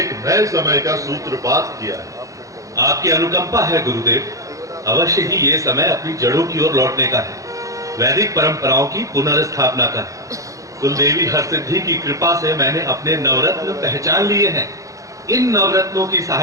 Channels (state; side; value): late; left; 0.16 ms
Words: नए समय का सूत्रपात किया है। आपकी अनुकंपा है गुरुदेव। अवश्य ही ये समय अपनी जड़ों की ओर लौटने का है, वैदिक परंपराओं की पुनर्स्थापना का। कुलदेवी हरसिद्धि की कृपा से मैंने अपने नवरत्न पहचान लिए हैं। इन नवरत्नों की